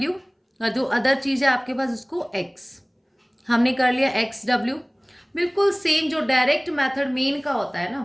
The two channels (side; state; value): both; identical; correlation 1.00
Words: और जो अदर चीज़ है आपके पास उसको X। हमने कर लिया XW। बिल्कुल सेम जो डायरेक्ट मेथड मीन का होता है